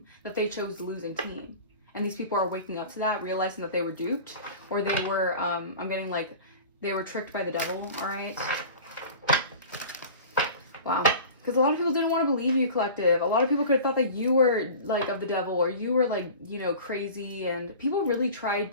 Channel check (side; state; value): both; inverted; correlation -0.38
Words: that they chose the losing team. And these people are waking up to that, realizing that they were duped, or they were, I'm getting like, they were tricked by the devil, all right? Wow. Because a lot of people didn't want to believe you, collective. A lot of people could have thought that you were like of the devil, or you were like, crazy. And people really tried